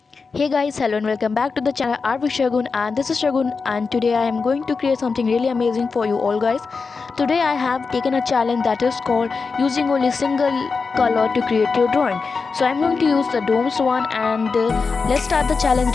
Hey guys, hello and welcome back to the channel Artwithshagun, and this is Shagun, and today I am going to create something really amazing for you all guys. Today I have taken a challenge that is called using only single color to create your drawing. So I'm going to use the domes one, and let's start the challenge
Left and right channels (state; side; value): quieter; right; 4.7 dB